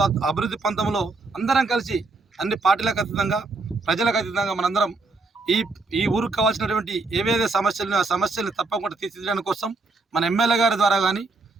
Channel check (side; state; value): left; quieter; 3.5 dB